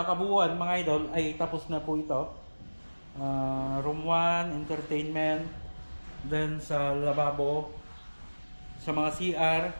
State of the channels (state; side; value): inverted; both; correlation -1.00